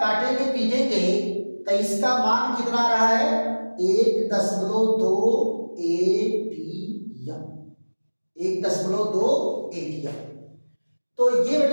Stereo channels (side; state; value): both; inverted; correlation -1.00